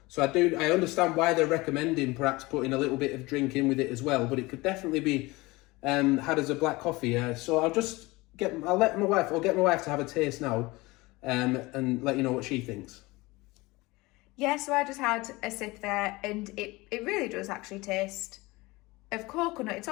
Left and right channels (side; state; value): right; quieter; 22.2 dB